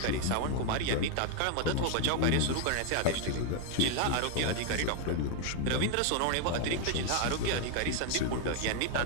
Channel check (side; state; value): both; different; correlation 0.01